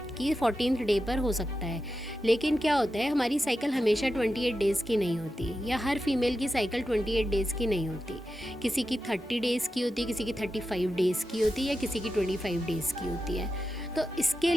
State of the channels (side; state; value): both; normal; correlation 0.90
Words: कि 14th डे पर हो सकता है। लेकिन क्या होता है, हमारी साइकिल हमेशा 28 डेज़ की नहीं होती, या हर फीमेल की साइकिल 28 डेज़ की नहीं होती। किसी की 30 डेज़ की होती है, किसी की 35 डेज़ की होती है, या किसी की 25 डेज़ की होती है। तो इसके